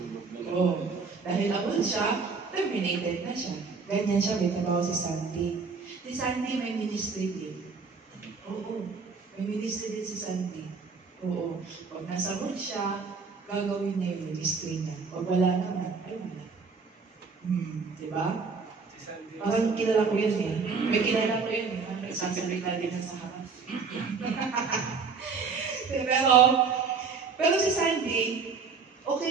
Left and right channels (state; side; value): quieter; left; 5.1 dB